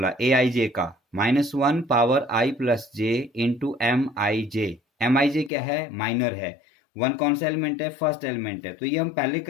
AIJ का -1 power I plus J into MIJ। MIJ क्या है, माइनर है, वन कौन सा एलिमेंट है, फर्स्ट एलिमेंट है। तो ये हम पहले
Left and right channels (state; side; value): drops out; right; at 5.5 s